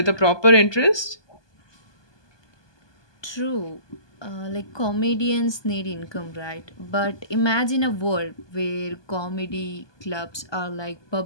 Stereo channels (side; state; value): right; late; 1.2 ms